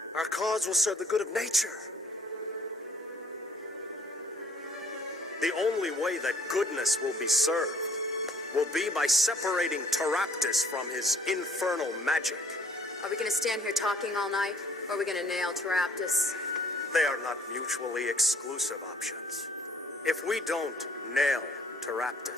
Our cause will serve the good of nature. The only way that goodness will be served will be by separating Taraptus from his infernal magic. Are we gonna stand here talking all night, or are we gonna nail Taraptus? They are not mutually exclusive options. If we don't nail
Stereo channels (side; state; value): both; normal; correlation 0.60